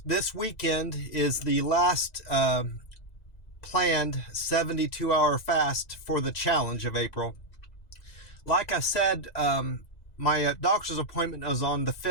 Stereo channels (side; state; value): right; late; 1.9 ms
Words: This weekend is the last planned 72-hour fast for the challenge of April. Like I said, my doctor's appointment is on the